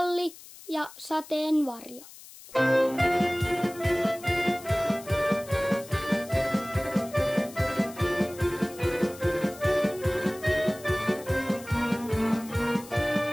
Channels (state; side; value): noise; left; hiss, 18 dB below the sound